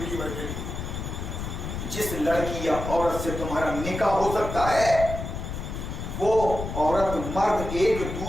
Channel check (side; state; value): left; noise; rumble, 6 dB below the sound